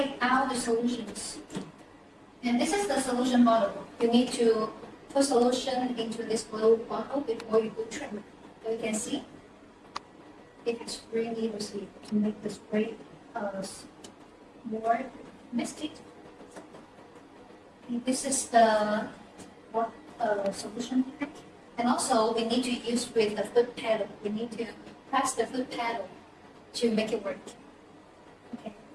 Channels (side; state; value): both; identical; correlation 1.00